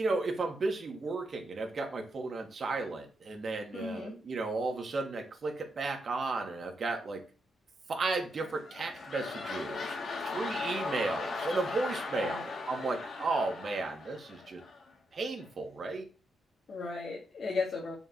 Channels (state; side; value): normal; both; correlation 0.82